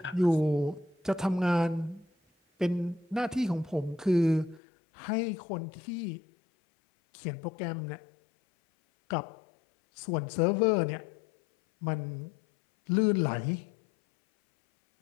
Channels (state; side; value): drops out; right; at 4.6 s